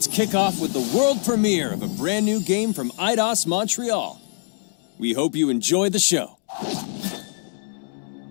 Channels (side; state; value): right; silent; 63 dB below the other